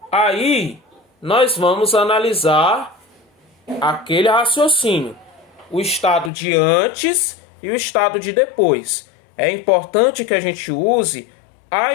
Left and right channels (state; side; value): drops out; right; at 6.3 s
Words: Aí, nós vamos analisar aquele raciocínio. O estado de antes e o estado de depois. É importante que a gente use a